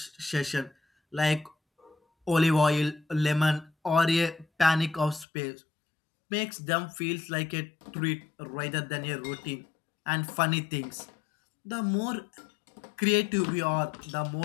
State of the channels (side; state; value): right; drops out; at 5.2 s